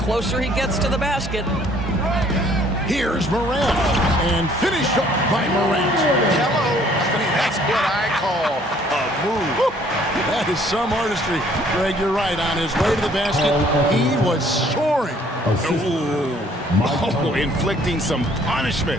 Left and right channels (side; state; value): both; normal; correlation 0.60